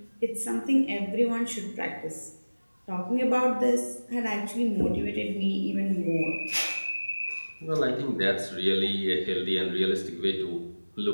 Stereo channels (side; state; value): both; inverted; correlation -1.00